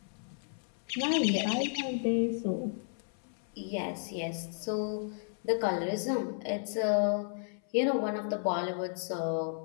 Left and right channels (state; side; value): silent; right; 56 dB below the other